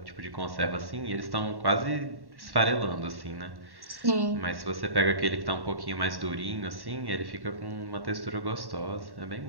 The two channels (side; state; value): left; late; 1.1 ms